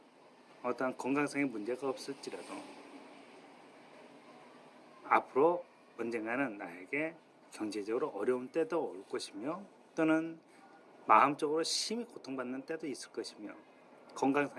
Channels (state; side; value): identical; both; correlation 1.00